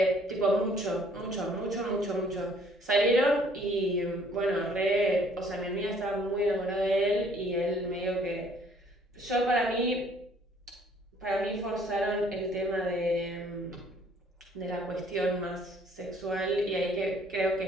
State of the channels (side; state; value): both; normal; correlation 0.60